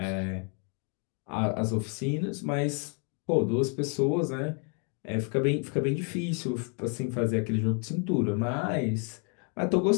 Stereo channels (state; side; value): quieter; right; 39.0 dB